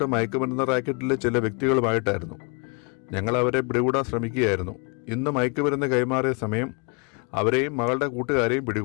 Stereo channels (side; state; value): right; quieter; 34.1 dB